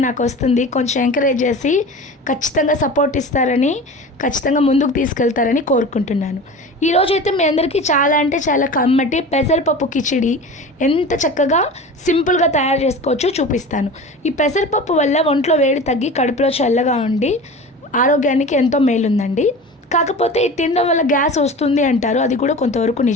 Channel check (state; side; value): normal; both; correlation 0.34